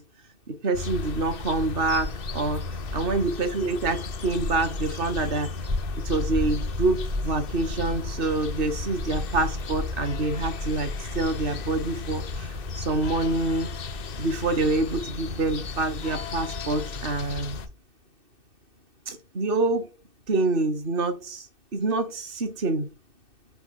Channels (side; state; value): left; late; 2.6 ms